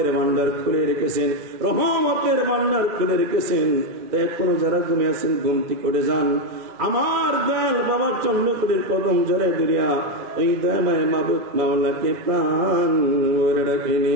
ভান্ডার খুলে রেখেছেন, রহমতের ভান্ডার খুলে রেখেছেন। তাই এখনো যারা ঘুমে আছেন ঘুমতি করে যান, আমার দয়াল বাবা চন্দ্রপুরের কদম জরে দুরিয়া ওই দয়াময় মাবুদ মাওলাকে প্রাণ ভরে ডাকে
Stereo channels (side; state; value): left; late; 2.3 ms